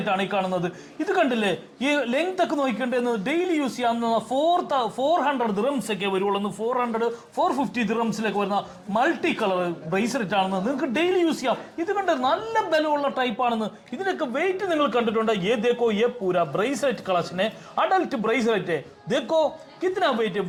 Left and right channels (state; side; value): identical; both; correlation 1.00